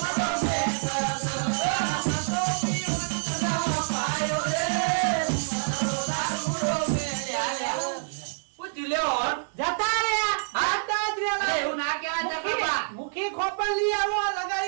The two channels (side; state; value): left; silent; 60 dB below the other